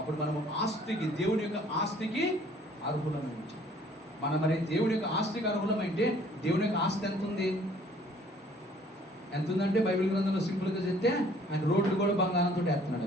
మనము ఆస్తికి, దేవుని యొక్క ఆస్తికి అర్హులమై ఉంటాం. మనం మరి దేవుని యొక్క ఆస్తికి అర్హులమైతే దేవుని యొక్క ఆస్తి ఎంత ఉంది? ఎంత ఉందంటే బైబిల్ గ్రంథంలో సింపుల్గా చెప్తే ఆయన రోడ్లు కూడా బంగారంతో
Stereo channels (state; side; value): normal; both; correlation 0.57